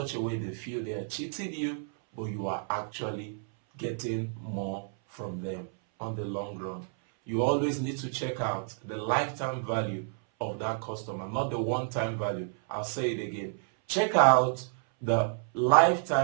a way they feel they are cheating you, but you are actually getting more from them on the long run. You always need to check out the lifetime value of that customer, not the one-time value. I'll say it again. Check out the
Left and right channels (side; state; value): left; silent; 58 dB below the other